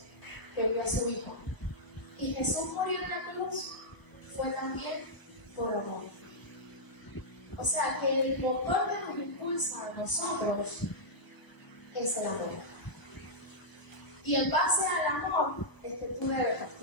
que envió a su Hijo. Y Jesús murió en la cruz fue también por amor. O sea que el motor que nos impulsa a nosotros es el amor. Y en base al amor es que tú debes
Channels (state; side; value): late; right; 1.0 ms